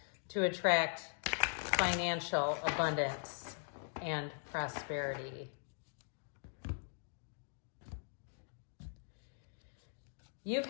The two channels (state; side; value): silent; right; digital silence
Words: to attract financial abundance and prosperity? You